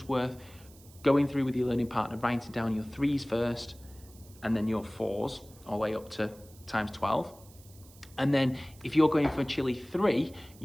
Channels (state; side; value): noise; right; hiss, 24 dB below the sound